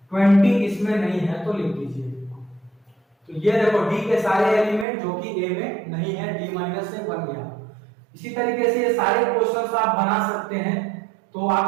20 इसमें नहीं है तो लिख दीजिए। तो ये देखो d के सारे एलिमेंट जो कि a में नहीं है, d माइनस से बन गया। इसी तरीके से ये सारे क्वेश्चंस आप बना सकते हैं, तो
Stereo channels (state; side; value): drops out; left; at 4.9 s